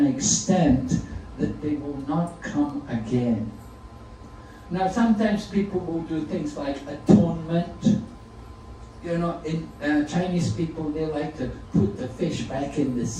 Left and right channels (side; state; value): both; identical; correlation 1.00